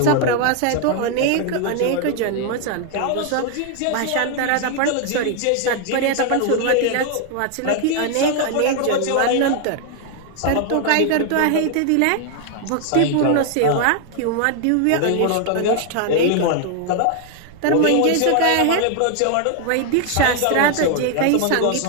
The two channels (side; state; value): both; different; correlation 0.00